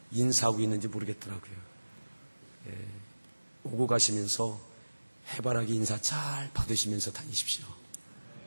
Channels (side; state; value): both; inverted; correlation -1.00